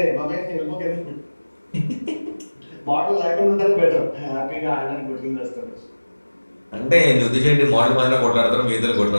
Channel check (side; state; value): both; inverted; correlation -1.00